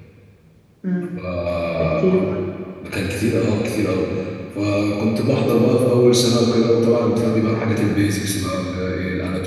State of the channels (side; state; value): both; identical; correlation 1.00